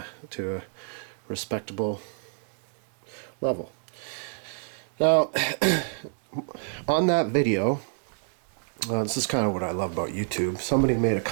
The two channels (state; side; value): silent; left; digital silence